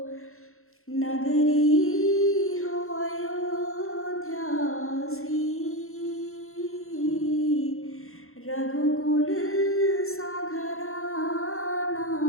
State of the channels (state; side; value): late; right; 0.62 ms